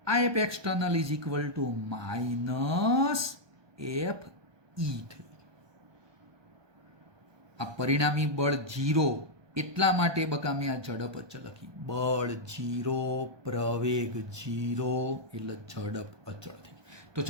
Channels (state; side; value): late; left; 1.2 ms